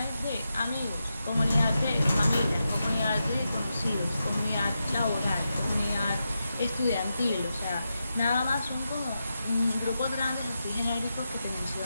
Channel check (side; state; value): both; inverted; correlation -0.88